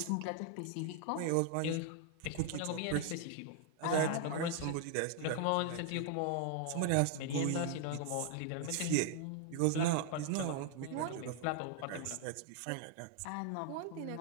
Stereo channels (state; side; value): different; both; correlation 0.00